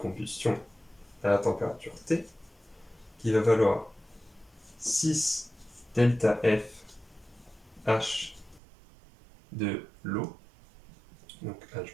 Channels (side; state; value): left; drops out; at 8.6 s